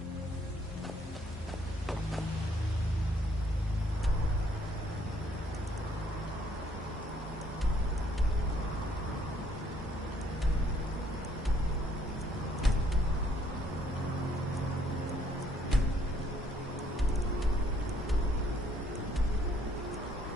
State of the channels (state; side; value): normal; both; correlation 0.66